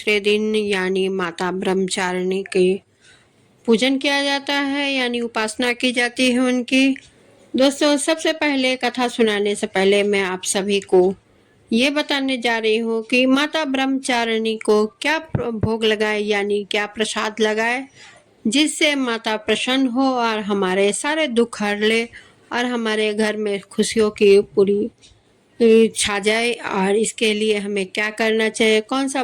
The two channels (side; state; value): both; identical; correlation 1.00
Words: दिन यानी माता ब्रह्मचारिणी के पूजन किया जाता है, यानी उपासना की जाती है उनकी। दोस्तों, सबसे पहले कथा सुनाने से पहले मैं आप सभी को ये बताने जा रही हूँ कि माता ब्रह्मचारिणी को क्या भोग लगाए, यानी क्या प्रसाद लगाए, जिससे माता प्रसन्न हो और हमारे सारे दुख हर ले और हमारे घर में खुशियों की पूरी छा जाए। और इसके लिए हमें क्या करना चाहिए, कौन सा